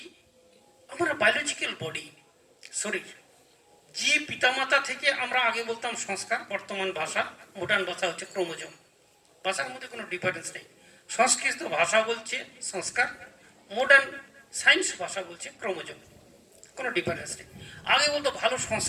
আমার বায়োলজিক্যাল বডি, শরীর, যে পিতামাতা থেকে আমরা আগে বলতাম সংস্কার, বর্তমান ভাষা, মডার্ন ভাষা হচ্ছে ক্রোমোজোম। ভাষার মধ্যে কোনো ডিফারেন্স নেই। সংস্কৃত ভাষা বলছে সংস্কার, মডার্ন সায়েন্স ভাষা বলছে ক্রোমোজোম, কোনো ডিফারেন্স নেই। আগে বলতো ভালো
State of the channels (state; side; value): identical; both; correlation 1.00